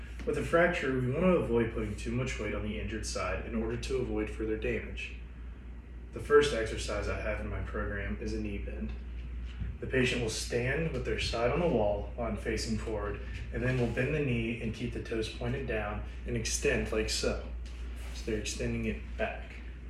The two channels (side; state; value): both; identical; correlation 1.00